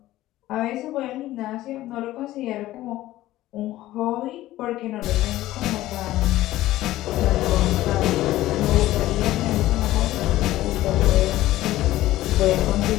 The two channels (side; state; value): right; quieter; 15.6 dB